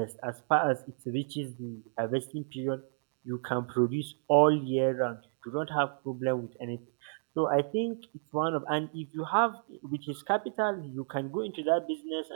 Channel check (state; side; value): silent; left; digital silence